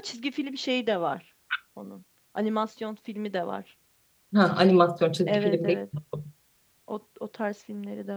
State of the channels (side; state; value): both; identical; correlation 1.00